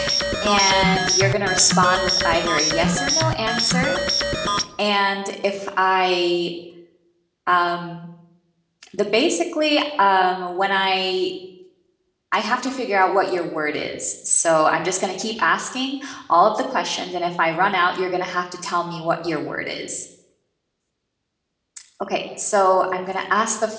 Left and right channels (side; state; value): both; identical; correlation 1.00